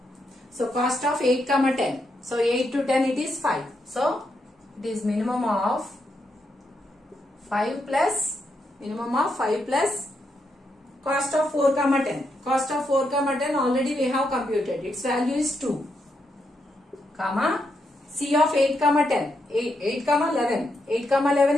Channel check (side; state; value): both; normal; correlation 0.81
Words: So cost of 8 comma 10. So 8 to 10 it is 5. So it is minimum of 5 plus cost of 4 comma 10. Cost of 4 comma 10 already we have computed. Its value is 2 comma C of 8 comma 10. 8 comma 11. 8 comma 11